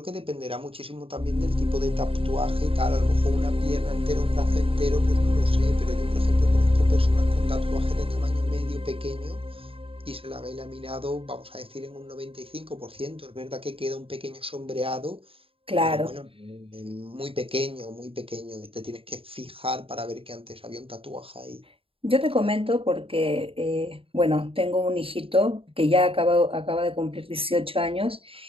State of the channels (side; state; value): left; late; 0.27 ms